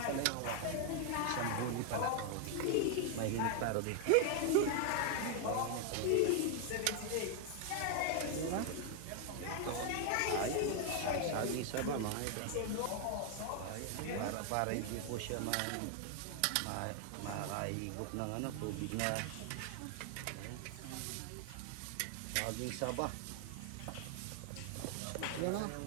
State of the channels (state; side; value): different; both; correlation 0.00